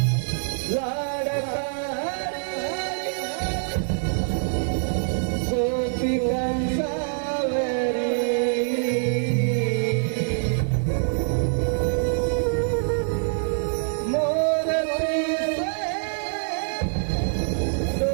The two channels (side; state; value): left; silent; digital silence